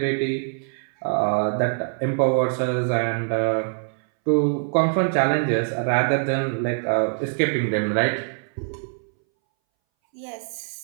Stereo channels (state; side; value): silent; left; 62 dB below the other